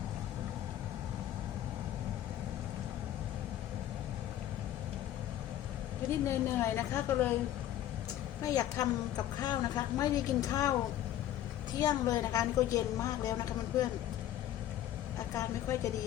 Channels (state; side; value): quieter; right; 12.4 dB